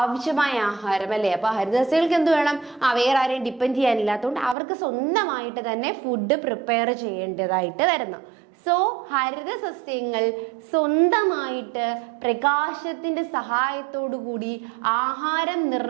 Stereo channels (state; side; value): drops out; left; at 4.5 s